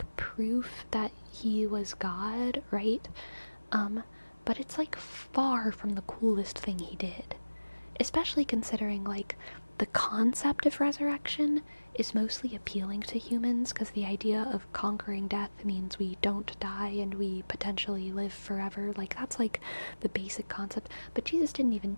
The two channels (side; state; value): both; inverted; correlation -1.00